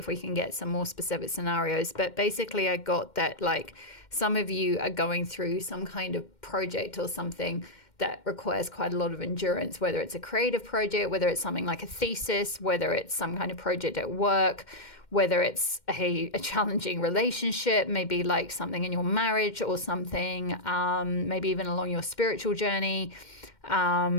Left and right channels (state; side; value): late; right; 2.1 ms